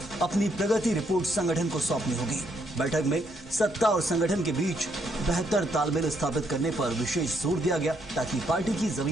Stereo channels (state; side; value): normal; both; correlation 0.74